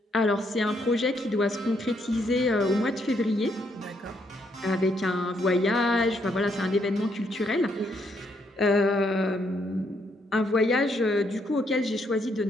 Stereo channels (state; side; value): normal; both; correlation 0.74